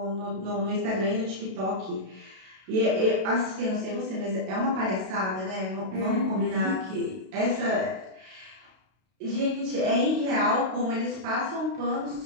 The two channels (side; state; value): left; late; 32 ms